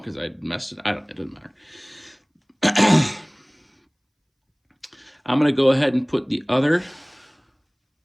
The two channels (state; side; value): identical; both; correlation 1.00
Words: I messed it. It doesn't matter. I'm going to go ahead and put the other